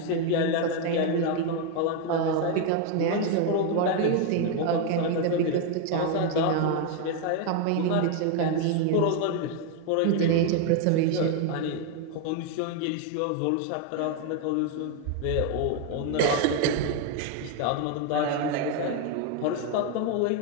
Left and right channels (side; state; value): both; different; correlation 0.01